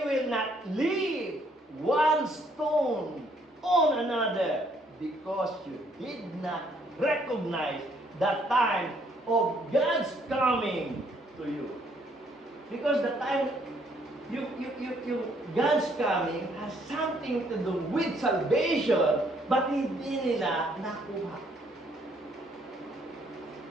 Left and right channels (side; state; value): both; normal; correlation 0.67